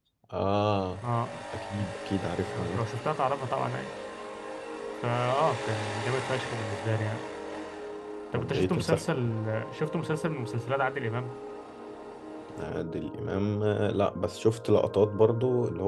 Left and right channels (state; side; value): identical; both; correlation 1.00